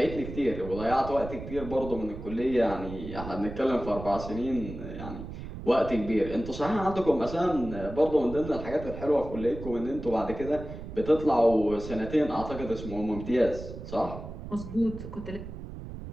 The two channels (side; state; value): right; noise; rumble, 10 dB below the sound